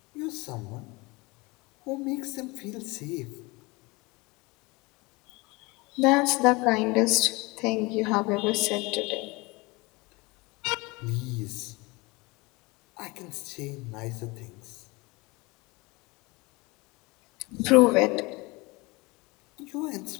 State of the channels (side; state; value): right; quieter; 24.7 dB